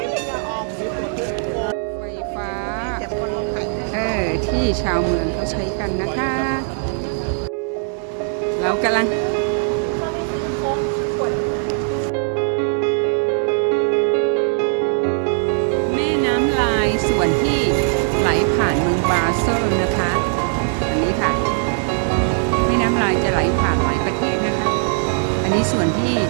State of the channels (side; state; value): left; silent; 59 dB below the other